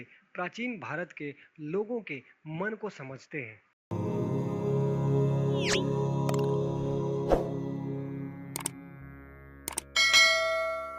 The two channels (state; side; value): identical; both; correlation 1.00